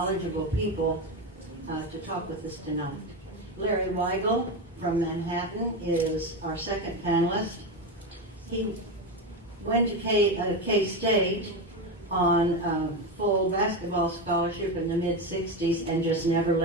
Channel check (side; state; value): both; normal; correlation 0.16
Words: people to talk with us tonight. Larry Weigel from Manhattan is our second panelist. He went to K-State on full basketball scholarship in the mid-60s and just never